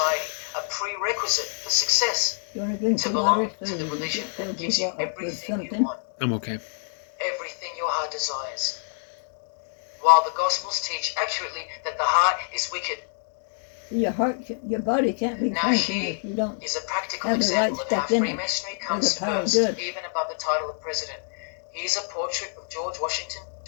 a prerequisite for success. You want to drink To some belong water? to the religion that gives you everything you something. want, I'm okay. everything your heart desires. While the Gospels teach accurately that the heart is wicked. Your heart, your body can't be Now functioning here if you don't. is a practical have the right example of how stuff in it, Freemasonry or comes the power of first, good. even above the title of president. Here's a portrait of George Washington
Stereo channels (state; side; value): silent; right; digital silence